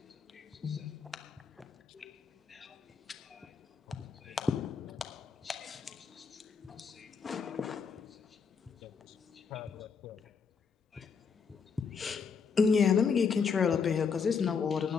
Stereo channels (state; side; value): quieter; right; 5.9 dB